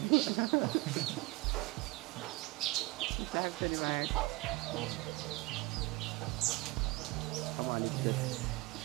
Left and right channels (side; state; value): left; quieter; 21.8 dB